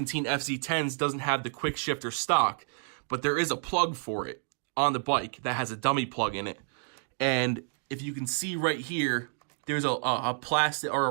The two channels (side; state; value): left; silent; 58 dB below the other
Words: FC10s doesn't have the quick shifter stock, but there is a plug for it on the bike that has a dummy plug in it. And if you can see right here, there's a plastic or a